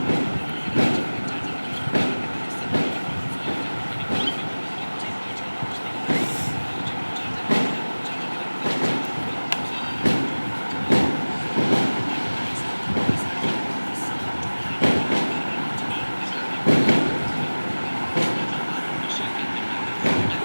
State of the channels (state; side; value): inverted; both; correlation -1.00